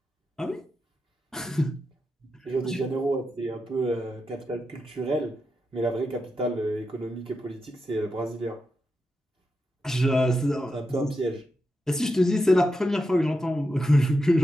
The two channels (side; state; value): both; normal; correlation 0.87